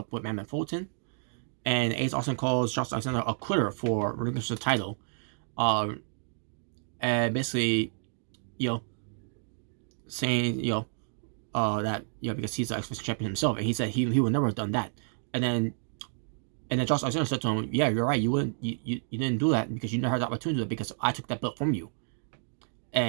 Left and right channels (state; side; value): silent; left; digital silence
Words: with Madman Fulton. And Ace Austin calls Josh Alexander a quitter for relinquishing the title, and basically, saying that because he's the X Division champion himself, and he said he would never have done that. And then Josh Alexander said to him, "Yeah, you're right. You didn't do that because you never had the opportunity to do it, because I took that belt from you."